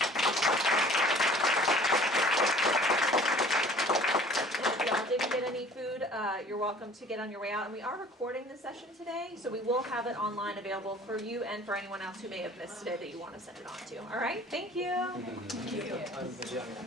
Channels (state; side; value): normal; both; correlation 0.49